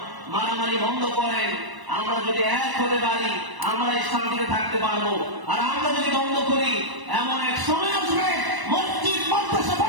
মারামারি বন্ধ করেন, আমরা যদি এক হতে পারি আমরা শান্তিতে থাকতে পারবো। আর আমরা যদি বন্ধ করি এমন এক সময় আসবে মসজিদ মাদ্রাসা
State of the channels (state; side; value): late; left; 1.0 ms